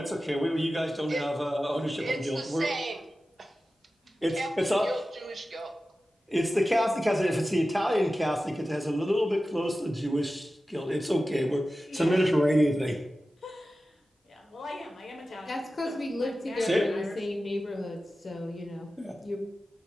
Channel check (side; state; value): both; normal; correlation 0.94